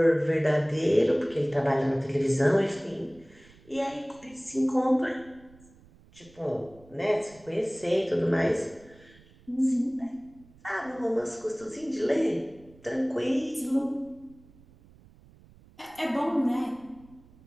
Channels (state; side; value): noise; right; rumble, 26 dB below the sound